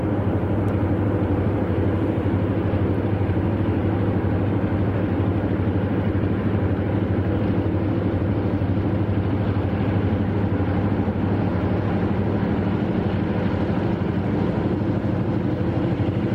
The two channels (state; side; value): identical; both; correlation 1.00